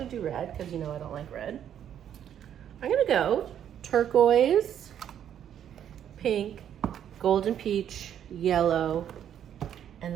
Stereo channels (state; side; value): quieter; left; 9.8 dB